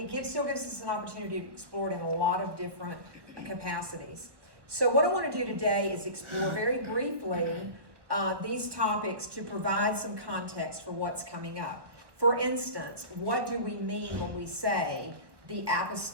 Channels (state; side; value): late; left; 1.1 ms